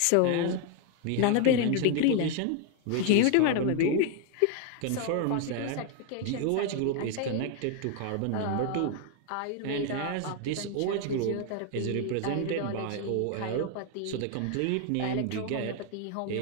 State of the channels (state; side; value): different; both; correlation 0.01